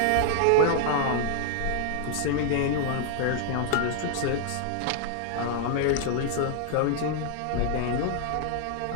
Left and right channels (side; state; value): both; different; correlation 0.00